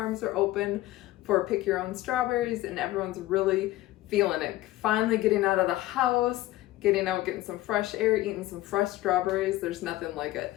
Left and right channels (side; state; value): right; quieter; 16.6 dB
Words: are open for pick your own strawberries, and everyone's really feeling it. Finally getting out of the house, getting out, getting some fresh air, eating some fresh strawberries. There's nothing like it.